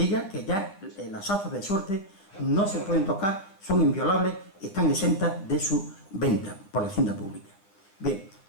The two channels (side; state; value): right; late; 10 ms